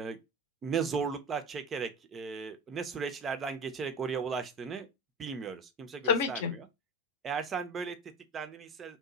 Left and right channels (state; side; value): normal; both; correlation 0.28